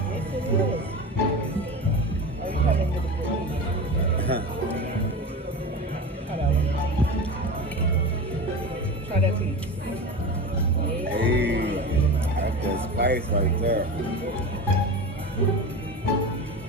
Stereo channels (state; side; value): normal; both; correlation 0.28